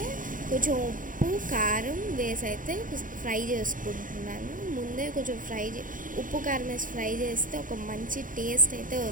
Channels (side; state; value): left; late; 0.39 ms